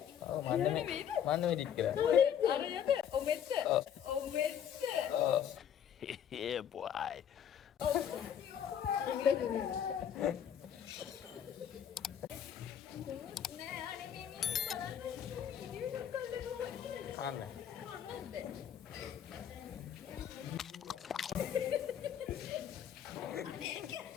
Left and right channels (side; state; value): right; quieter; 9.1 dB